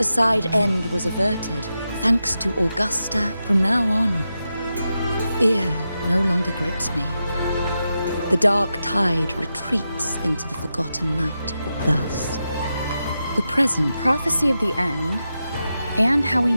end was averted, thanks to Augusta. From now on, fear no longer grips me. The dark tide retreats into the forgotten night. Thus, the present Prophecy of the end, and how we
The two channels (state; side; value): inverted; both; correlation -0.89